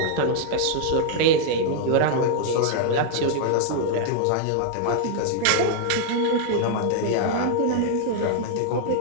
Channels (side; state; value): both; different; correlation 0.00